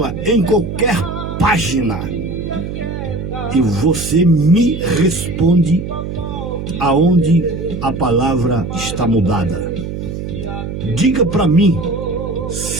em qualquer página. E você me responde aonde a palavra está mudada. Diga para mim,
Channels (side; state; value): right; noise; hum, 6 dB below the sound